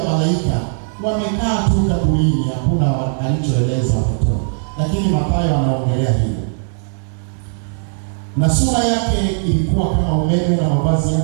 malaika, wamekaa tu kaburini, hakuna alichoeleza watoto. Lakini Mathayo anaongelea hilo. Na sura yake ilikuwa kama umeme, na mavazi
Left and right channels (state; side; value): silent; left; digital silence